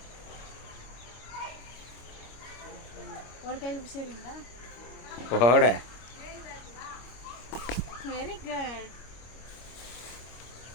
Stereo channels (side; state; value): right; late; 25 ms